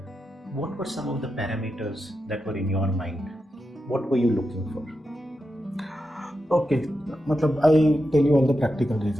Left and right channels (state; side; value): normal; both; correlation 0.88